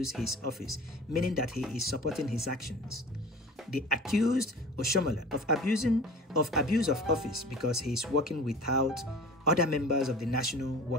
his office, meaning that he is supporting his actions. They accused Oshiomhole of abuse of office because he is working without other members of the National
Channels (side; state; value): both; normal; correlation 0.40